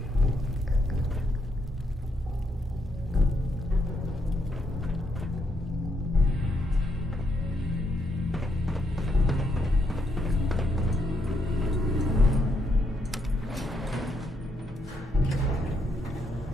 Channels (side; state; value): both; normal; correlation 0.77